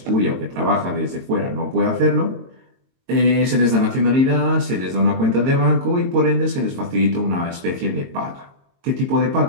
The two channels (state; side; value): late; left; 22 ms